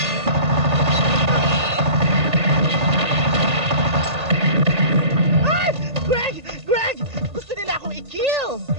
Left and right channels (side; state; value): left; late; 1.8 ms